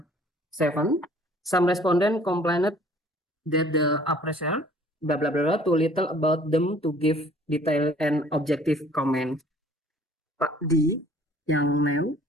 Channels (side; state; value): both; normal; correlation 0.54